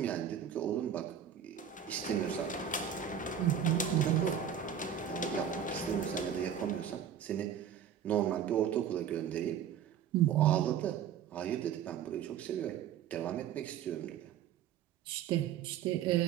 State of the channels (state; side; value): quieter; left; 8.8 dB